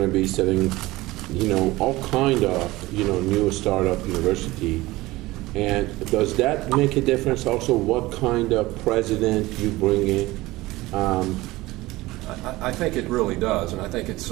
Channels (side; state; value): left; quieter; 19.2 dB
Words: to be setting, all kind of, new startup university. And does that make a difference? Also, what kind of president you bring in? I think it really does, and I think it's,